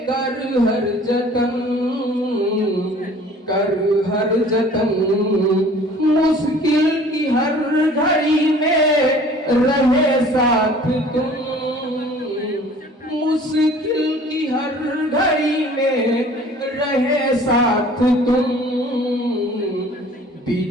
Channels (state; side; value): normal; both; correlation 0.49